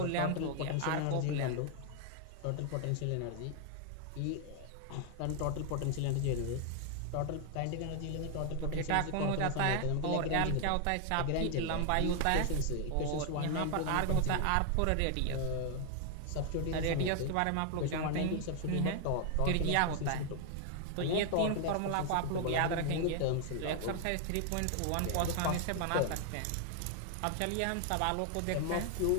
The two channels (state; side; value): different; both; correlation 0.00